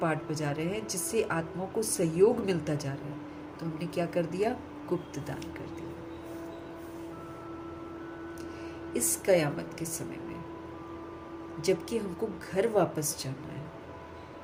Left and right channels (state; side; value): identical; both; correlation 1.00